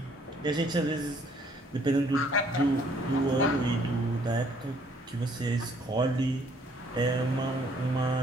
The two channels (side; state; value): both; normal; correlation 0.63